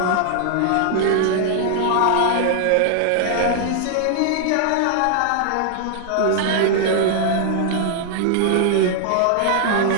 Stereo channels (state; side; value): different; both; correlation 0.00